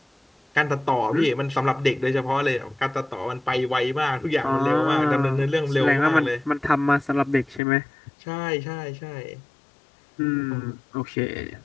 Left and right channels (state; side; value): drops out; right; at 7.6 s